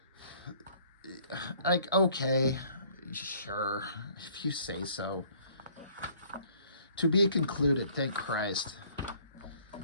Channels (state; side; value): inverted; both; correlation -0.58